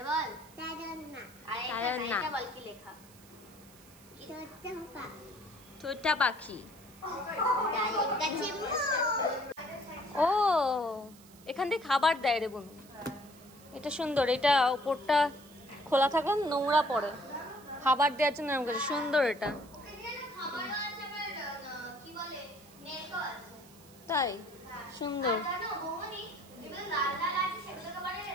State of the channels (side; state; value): right; noise; hiss, 23 dB below the sound